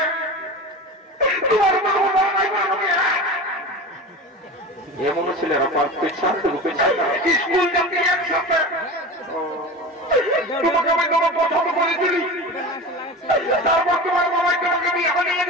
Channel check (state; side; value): normal; both; correlation 0.30